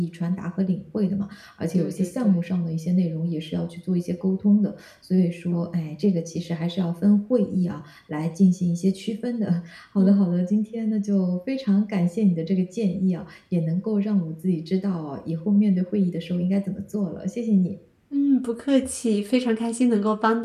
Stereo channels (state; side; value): identical; both; correlation 1.00